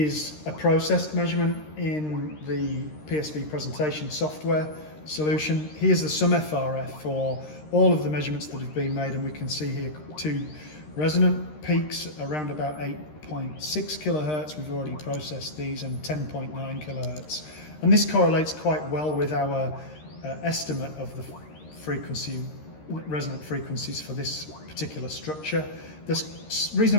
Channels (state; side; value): late; right; 13 ms